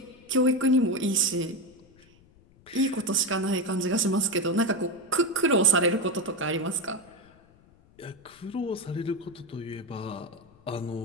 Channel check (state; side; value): noise; left; rumble, 28 dB below the sound